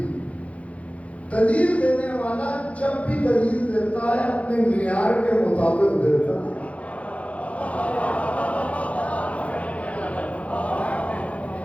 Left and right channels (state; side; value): late; right; 0.065 ms